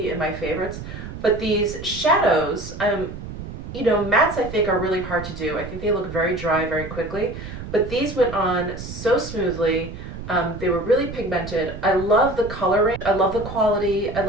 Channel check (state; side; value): noise; right; rumble, 10 dB below the sound